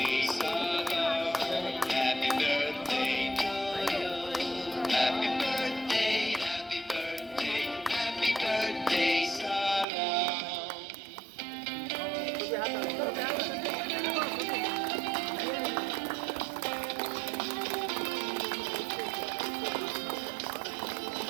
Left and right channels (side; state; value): left; drops out; at 9.9 s